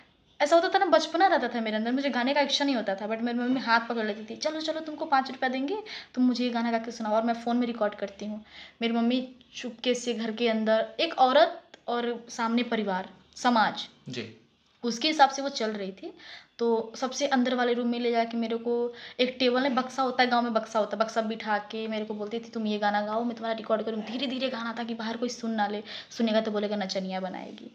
ऐसा होता था ना, बचपना रहता था मेरे अंदर, मुझे गाने का इच्छा नहीं होता था, बट मेरी मम्मी हाथ पकड़ लेती थी, चलो चलो तुमको 5 रुपया देंगे, तुम मुझे ये गाना गा के सुनाओ, और मैं फ़ोन में रिकॉर्ड करती हूँ। मेरी मम्मी चुपके से घर के अंदर, एक औरत और सामने परिवार समाज जी। उसके हिसाब से वो चल रही थी। तो सबसे अंदर वाले रूम में ले जाके मेरे को एक टेबल में, बक्सा होता है गांव में, बक्सा होता है, बक्सा बिठा के मेरे को बोलती थी तुम ये गाना गाओ, मैं तुम्हारा रिकॉर्ड करूँ। धीरे धीरे गाना था कि बाहर कोई सुन ना ले, सुनेगा तो बोलेगा नचनिया बनाएगी,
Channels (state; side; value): identical; both; correlation 1.00